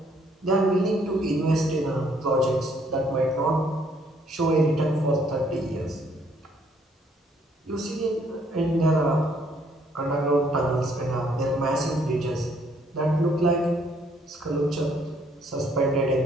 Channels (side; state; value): both; normal; correlation 0.67